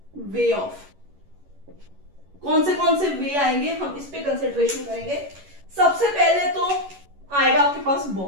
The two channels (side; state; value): left; late; 11 ms